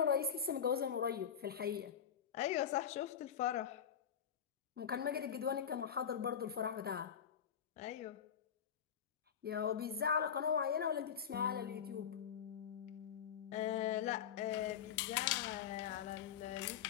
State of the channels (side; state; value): right; quieter; 8.2 dB